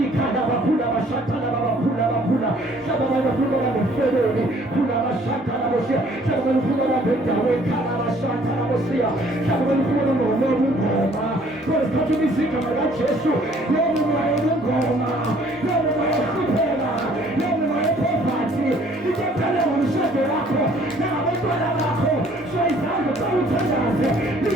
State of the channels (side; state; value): both; normal; correlation 0.59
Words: bakhula abashathana babakhula bakhula. Hlaba bayafuna ngefamily, khula abashathana bosiya. Hlaba bayafuna ngabendawo ekhaya abashathana bosiya. Hlaba bayafuna ngoma. Kodwa isikhathi ubiza igama laJesu. Yebo ngoma. Yebo kuphela. Yebo poverty. Ikephala ngomshado wakho. Nabantwana bakho. So izango zawuthandaze.